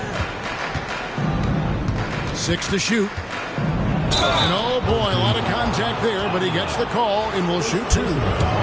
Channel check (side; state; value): both; identical; correlation 1.00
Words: 6 to shoot. And oh boy, a lot of contact there, but he gets the call and will shoot 2.